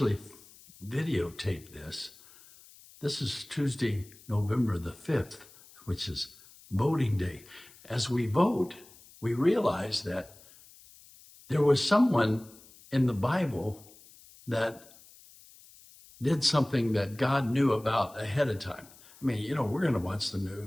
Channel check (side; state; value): left; noise; hiss, 23 dB below the sound